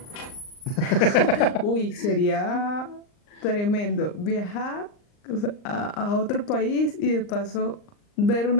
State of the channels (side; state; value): right; late; 39 ms